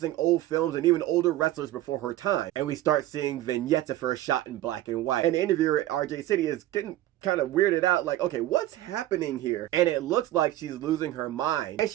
old films and even older wrestlers before her time. And we start seeing vignettes of her shot in black and white. And the interviewer at RJ City is getting kind of weirded out, like, okay, what's happening here? And it looks like she's losing her mind. And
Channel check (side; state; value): left; quieter; 14.8 dB